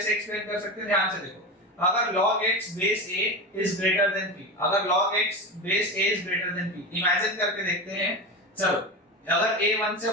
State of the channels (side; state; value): both; normal; correlation 0.23